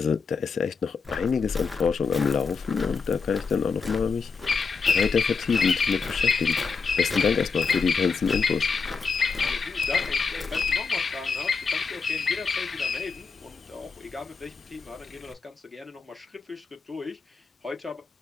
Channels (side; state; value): right; quieter; 5.1 dB